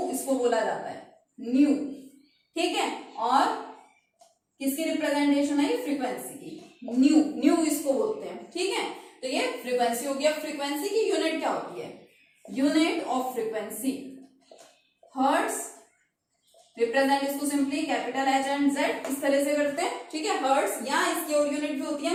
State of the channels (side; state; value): both; identical; correlation 1.00